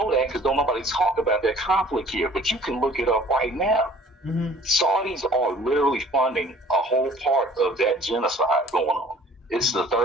that because don't nobody talk about that conflict here, but you can look it up right now. Mm-hmm. Saudis are literally funding a whole part of that genocide going on. It's the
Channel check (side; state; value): both; normal; correlation 0.52